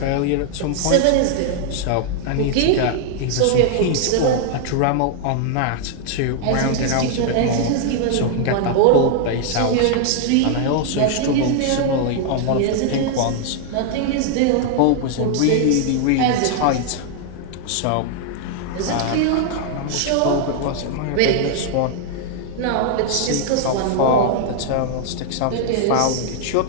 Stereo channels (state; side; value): different; both; correlation 0.00